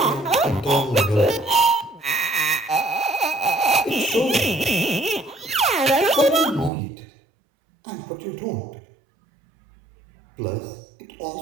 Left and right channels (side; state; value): left; drops out; at 6.7 s